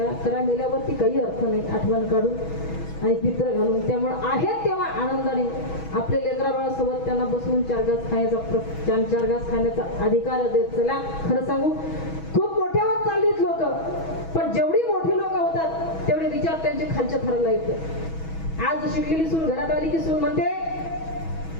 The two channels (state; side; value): late; right; 6.2 ms